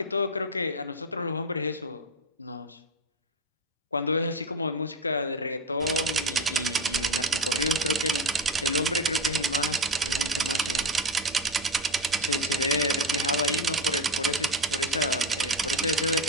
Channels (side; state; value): both; normal; correlation 0.17